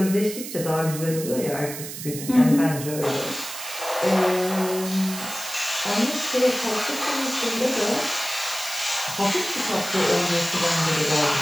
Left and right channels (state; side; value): noise; right; hiss, 9 dB below the sound